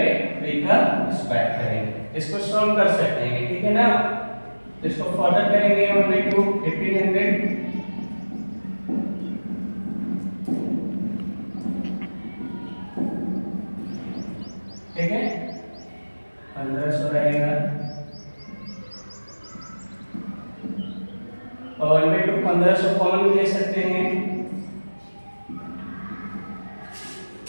का स्क्वायर करेंगे, इसको सॉल्व कर सकते हैं, ठीक है ना। इसको फर्दर करेंगे 1/2 1500, ठीक है, 1500 रहेगा, और 1/2 1500 कॉमन ले सकते हैं,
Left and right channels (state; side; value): inverted; both; correlation -1.00